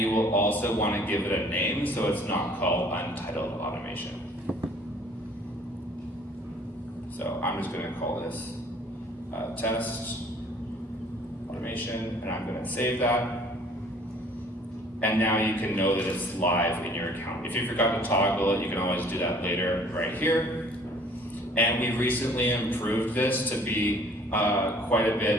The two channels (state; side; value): normal; both; correlation 0.54